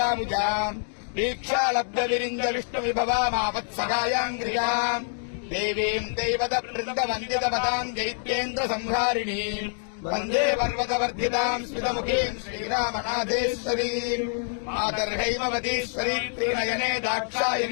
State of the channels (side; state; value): right; silent; digital silence